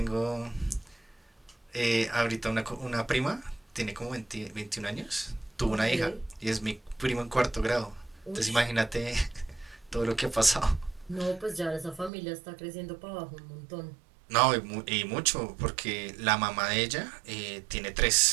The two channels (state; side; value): drops out; left; at 12.1 s